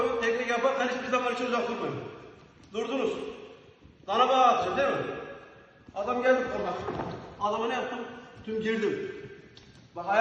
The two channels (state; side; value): identical; both; correlation 1.00